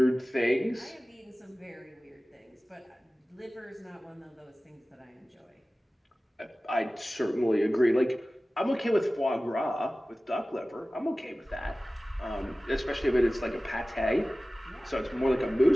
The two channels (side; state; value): both; normal; correlation 0.97